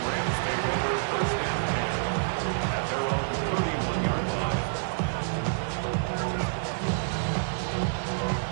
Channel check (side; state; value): left; silent; digital silence